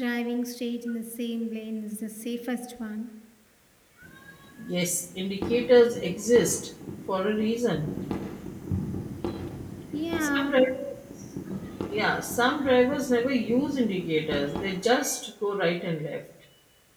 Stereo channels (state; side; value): identical; both; correlation 1.00